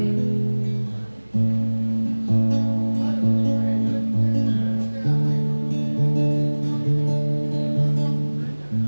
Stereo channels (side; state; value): both; inverted; correlation -1.00